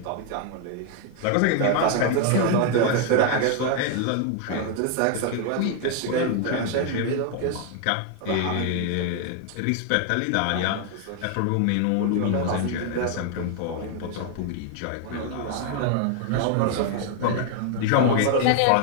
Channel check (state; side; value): different; both; correlation 0.00